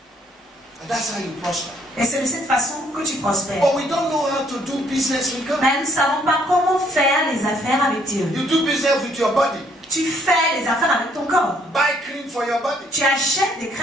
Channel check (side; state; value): both; normal; correlation 0.66